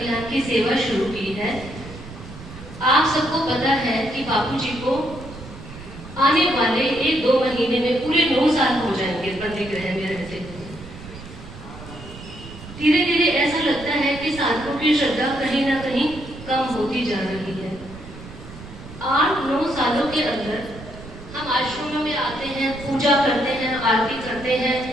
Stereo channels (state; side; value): noise; right; rumble, 15 dB below the sound